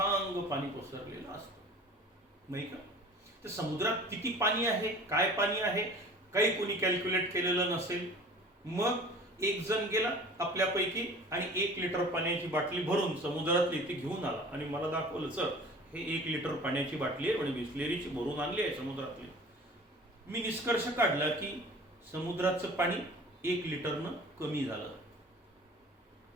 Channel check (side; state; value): both; normal; correlation 0.44